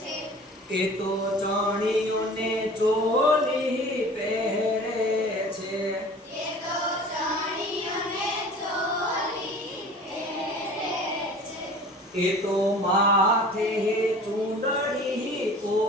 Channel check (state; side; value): normal; both; correlation 0.43